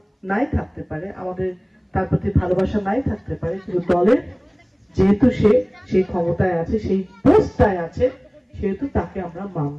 নাই থাকতে পারে, আমাদের তার প্রতি ভালোবাসা নাই থাকতে পারে, কিন্তু দলের যেহেতু সে সেই ক্ষমতায় আছে, সেই পোস্টটায় আছে, সেহেতু তাকে আমরা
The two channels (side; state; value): both; identical; correlation 1.00